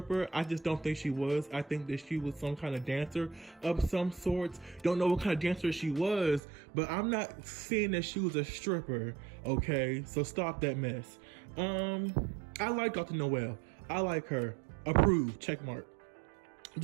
I just don't think she was. I think that she was some kind of dancer of some sorts. Don't know what kind of dancer she was, but I'm not seeing that she was a stripper. Okay, so stop that mess. I like Dr. Noel. I like her. Approved. Check mark.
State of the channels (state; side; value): drops out; left; at 6.4 s